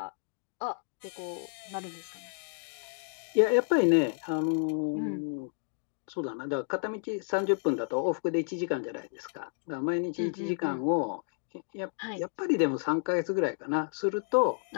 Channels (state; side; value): silent; right; digital silence